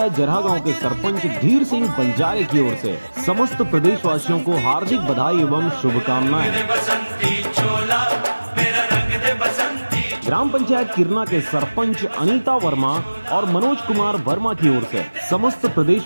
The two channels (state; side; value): inverted; both; correlation -1.00